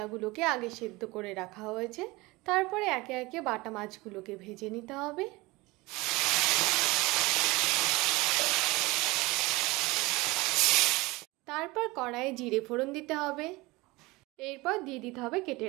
আগে সেদ্ধ করে রাখা হয়েছে, তারপরে একে একে বাটা মাছগুলোকে ভেজে নিতে হবে। তারপর কড়াইয়ে জিরে ফোড়ন দিতে হবে। এরপর দিয়ে দিতে হবে কেটে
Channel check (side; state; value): left; quieter; 22.4 dB